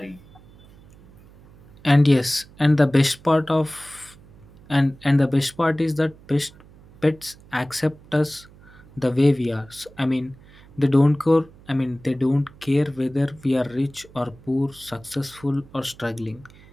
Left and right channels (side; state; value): right; noise; hum, 24 dB below the sound